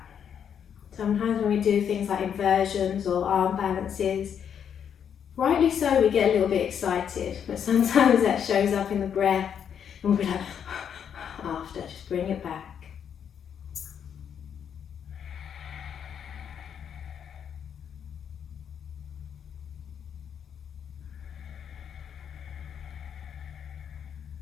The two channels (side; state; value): right; quieter; 8.2 dB